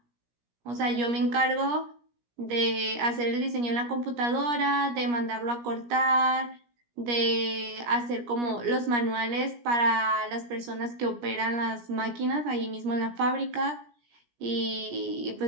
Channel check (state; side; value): late; left; 17 ms